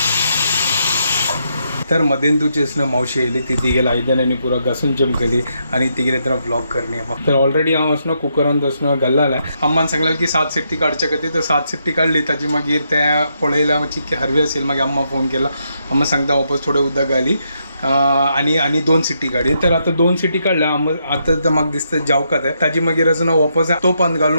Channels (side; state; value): both; inverted; correlation -0.79